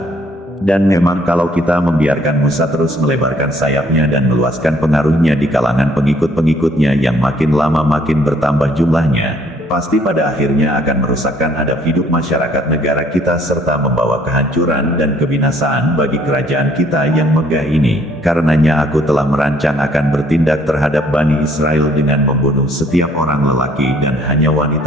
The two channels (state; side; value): normal; both; correlation 0.62